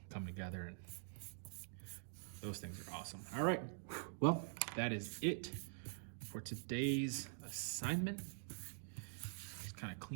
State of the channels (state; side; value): silent; left; digital silence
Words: come together, and those things are awesome. All right, well, that is it for today's assignment. Just kind of